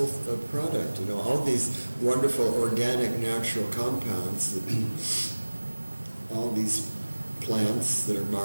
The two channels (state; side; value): inverted; both; correlation -1.00